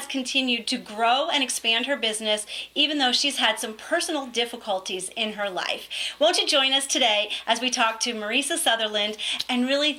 continued to grow and expand her business, even though she's had some personal difficulties in her life. Won't you join us today as we talk to Mariesa Sutherland and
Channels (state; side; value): identical; both; correlation 1.00